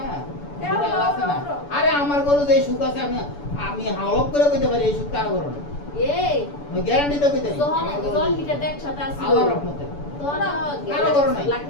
ওরা আল্লাহ আছে না। আরে আমার গরু যে সুখ আছে, আমি হাওলপ করে কইতে পারি এই সুখ কারো গরু না। এই আমি গ্যারান্টি তো কইতে পারি যখন জল হিটার দেখ সাথে আসলো আল্লাহর রহমতে। তখন কারো গরু নাই।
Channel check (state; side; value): late; right; 7.0 ms